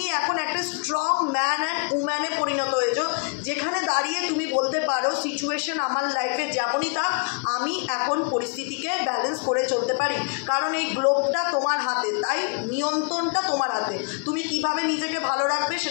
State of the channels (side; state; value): right; quieter; 37.0 dB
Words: এখন একটা স্ট্রং ম্যান অ্যান্ড উম্যানে পরিণত হয়েছো, যেখানে দাঁড়িয়ে তুমি বলতে পারো সিচুয়েশন আমার লাইফে যেমনই থাক আমি এখন পরিস্থিতিকে ব্যালেন্স করে চলতে পারি, কারণ এই গ্লোবটা তোমার হাতে, তাই নিয়ন্ত্রণটা তোমার হাতে। তুমি কিভাবে নিজেকে ভালো রাখবে